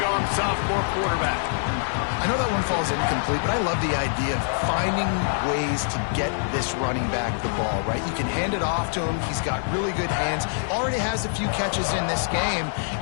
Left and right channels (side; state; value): right; silent; digital silence